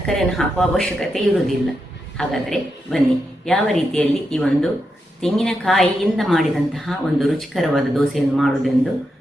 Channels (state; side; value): normal; both; correlation 0.85